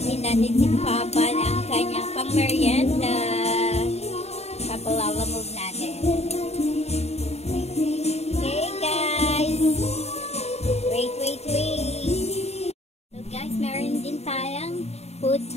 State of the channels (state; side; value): late; right; 0.31 ms